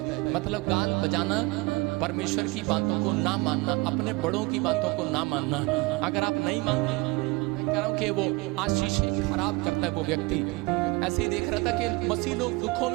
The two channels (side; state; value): left; quieter; 24.6 dB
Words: मतलब गाल बजाना, परमेश्वर की बातों को ना मानना, अपने बड़ों की बातों को ना मानना। अगर आप नहीं मानते, मैं कह रहा हूँ कि वो आशीष खराब करता है वो व्यक्ति। ऐसे ही देख रहा था कि मसीह लोग दुखों